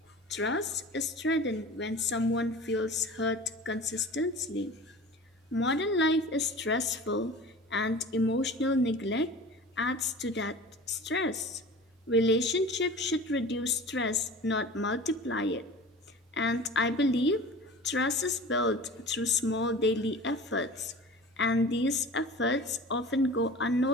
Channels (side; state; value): both; normal; correlation 0.39